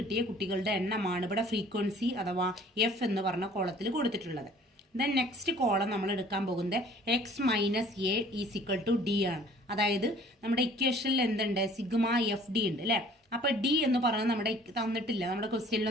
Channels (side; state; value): both; normal; correlation 0.53